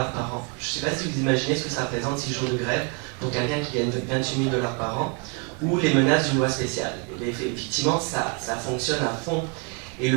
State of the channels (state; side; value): quieter; left; 34.1 dB